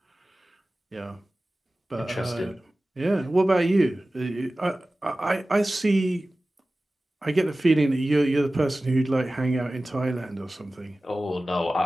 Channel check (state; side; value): normal; both; correlation 0.97